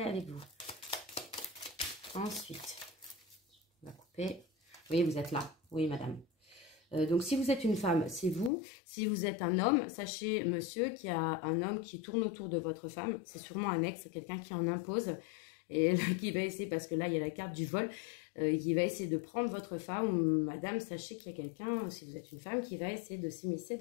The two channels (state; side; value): drops out; right; at 8.5 s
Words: avec vous. Ensuite, on va couper. Oui, vous êtes là. Oui, madame. Donc, si vous êtes une femme, c'est vous. Si vous êtes un homme, sachez, monsieur, qu'il y a un homme qui tourne autour de votre femme. C'est sûrement un ex, quelqu'un qui en impose. et qui va essayer, parce que là, il y a la carte du vol, qui va essayer de prendre votre femme, ou madame, sachez qu'il y a quelqu'un, si vous êtes une femme, qui va essayer de s'immiscer